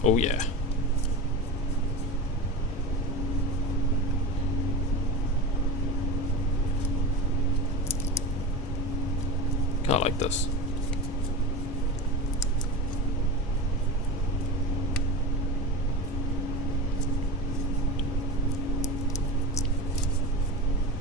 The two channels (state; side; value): normal; both; correlation 0.28